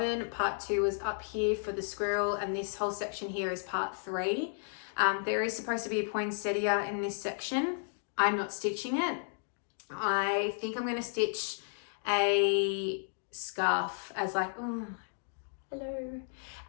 part 2 was up here for the squirrel, and this whole section here is part 3. There is supposed to be a poinsettia in this section. I'm not stitching it. I think I'm going to stitch a scarf as like, oh, hello,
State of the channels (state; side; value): silent; right; digital silence